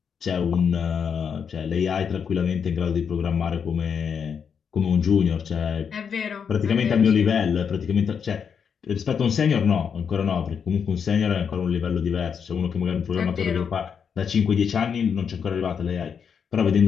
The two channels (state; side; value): quieter; right; 6.9 dB